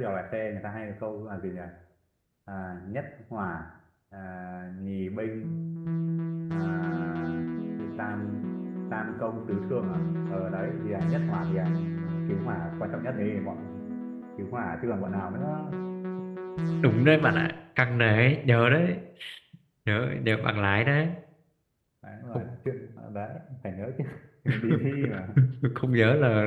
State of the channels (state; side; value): identical; both; correlation 1.00